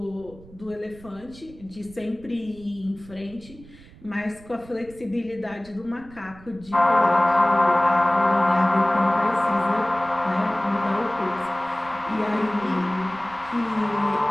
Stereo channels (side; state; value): right; noise; rumble, 21 dB below the sound